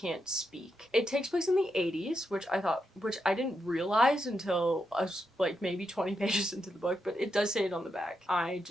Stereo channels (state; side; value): normal; both; correlation 0.84